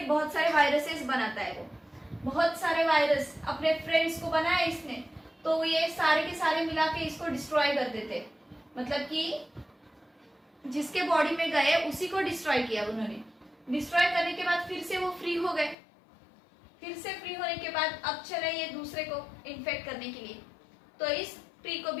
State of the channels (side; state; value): right; drops out; at 15.8 s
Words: बहुत सारे वायरसेस बनाता है। वो बहुत सारे वायरस अपने फ्रेंड्स को बनाया इसने, तो ये सारे के सारे मिला के इसको डिस्ट्रॉय कर देते, मतलब कि जिसके बॉडी में गए उसी को डिस्ट्रॉय किया उन्होंने। डिस्ट्रॉय करने के बाद फिर से वो फ्री हो गए। फिर से फ्री होने के बाद अब चले ये दूसरे को इन्फेक्ट करने के लिए, तो इस ट्री को